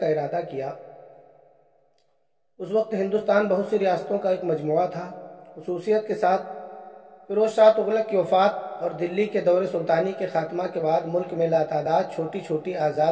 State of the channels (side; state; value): both; identical; correlation 1.00